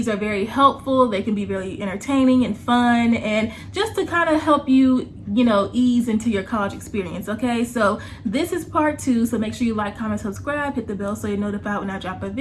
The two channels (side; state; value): both; identical; correlation 1.00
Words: are very helpful. They can be very entertaining and fun, and just to kind of help you, you know, ease into your college experience. Okay, so this is part 2, so make sure you like, comment, subscribe, hit the bell so you're notified when I drop a